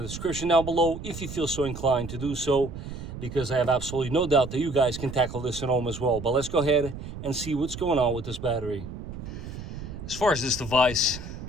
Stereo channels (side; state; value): right; noise; rumble, 10 dB below the sound